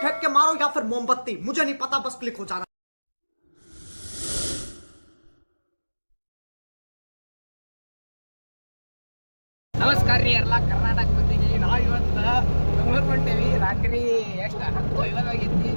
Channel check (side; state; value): both; inverted; correlation -1.00